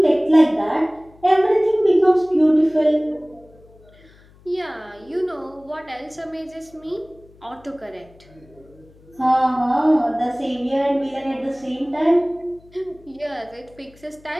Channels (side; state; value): left; noise; hum, 27 dB below the sound